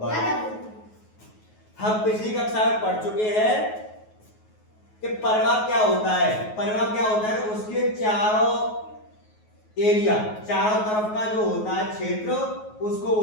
हम पिछली कक्षा में पढ़ चुके हैं कि परिमाप क्या होता है। परिमाप क्या होता है, उसके चारों एरिया, चारों तरफ का जो होता है क्षेत्र, उसको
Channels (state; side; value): late; right; 9.4 ms